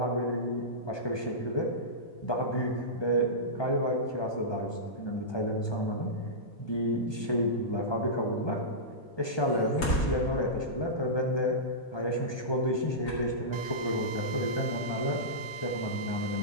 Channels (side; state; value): right; late; 1.2 ms